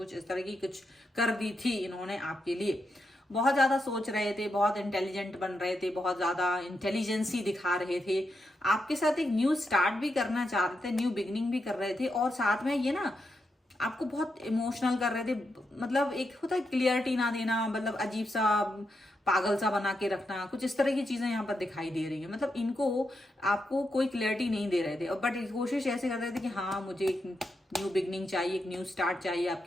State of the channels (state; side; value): normal; both; correlation 0.84